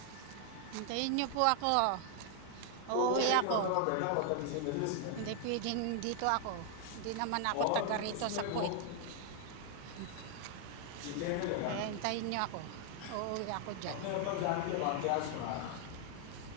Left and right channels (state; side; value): different; both; correlation 0.00